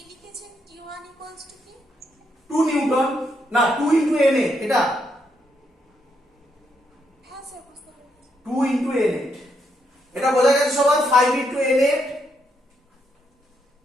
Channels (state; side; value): normal; both; correlation 0.78